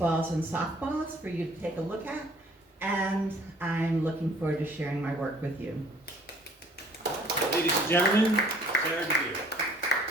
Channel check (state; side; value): normal; both; correlation 0.56